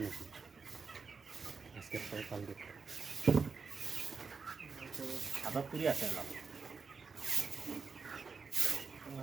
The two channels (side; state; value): left; quieter; 5.1 dB